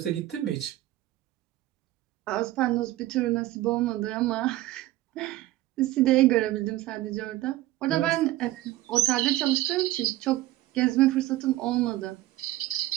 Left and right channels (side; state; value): left; quieter; 16.0 dB